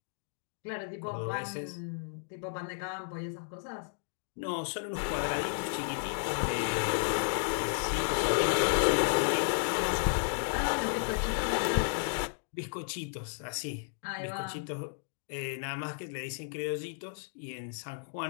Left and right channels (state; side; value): silent; right; digital silence